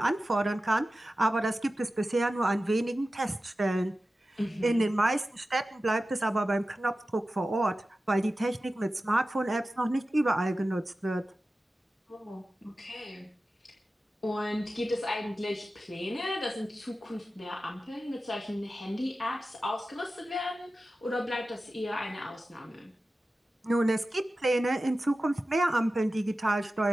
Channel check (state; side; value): normal; both; correlation 0.94